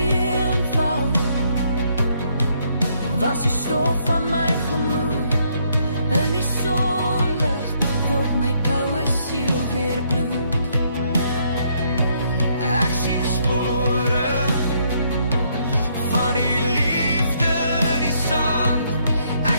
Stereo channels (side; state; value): both; inverted; correlation -0.71